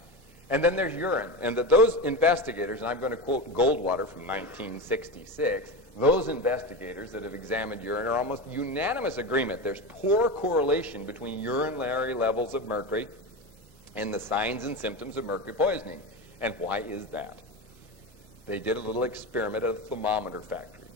And then there's urine. And that those investigators, and I'm going to quote Goldwater from 1966, those investigators that have examined urine are almost unanimous agreement. There's poor correlation between urinary levels of mercury and the signs and symptoms of mercury poisoning. And why is that? They did a little experiment at a thermometer factory.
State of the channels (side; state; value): both; normal; correlation 0.21